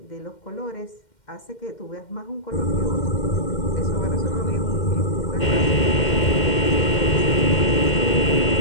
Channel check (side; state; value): right; late; 2.1 ms